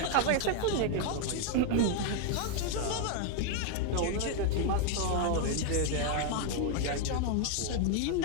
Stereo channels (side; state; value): both; different; correlation 0.01